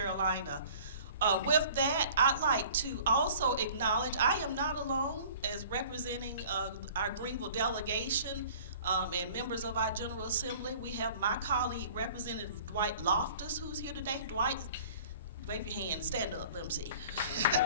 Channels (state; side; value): inverted; both; correlation -0.48